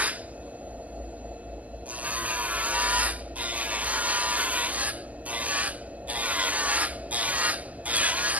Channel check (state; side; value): late; left; 0.075 ms